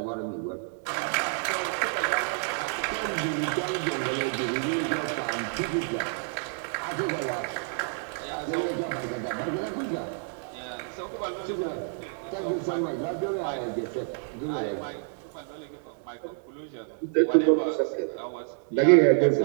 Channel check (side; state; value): left; silent; 59 dB below the other